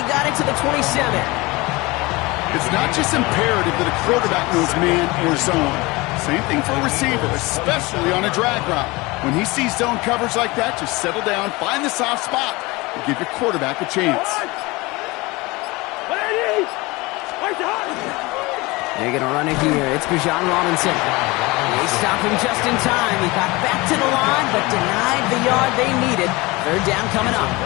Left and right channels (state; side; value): quieter; right; 23.1 dB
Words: got it to the 27. It's not just imperative that a quarterback knows man or zone. Same thing for a receiver, especially on a drag route. When he sees zone coverage like that, just settle down, find the soft spot, and give your quarterback a chance. They're going to run it here. It's Bijan Robinson. They stop him just in time. He got back to the line, but denied the yard they needed. 3rd down coming up.